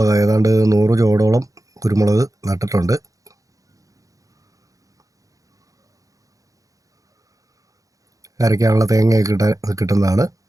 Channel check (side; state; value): left; late; 0.16 ms